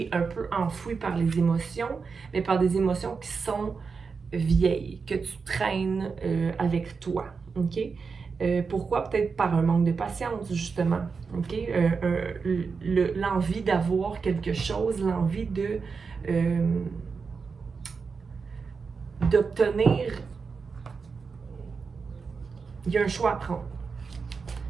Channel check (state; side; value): quieter; left; 5.1 dB